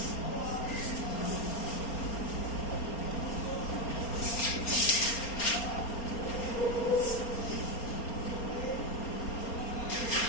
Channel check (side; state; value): right; late; 4.3 ms